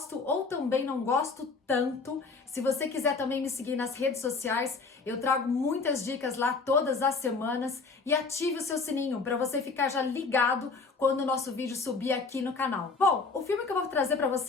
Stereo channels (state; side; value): quieter; right; 4.3 dB